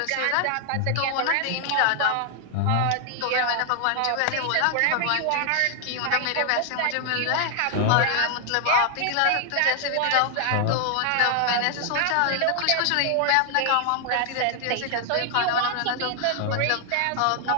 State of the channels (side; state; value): both; different; correlation 0.00